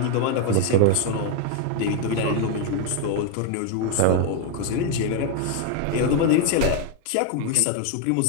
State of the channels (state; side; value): different; both; correlation 0.01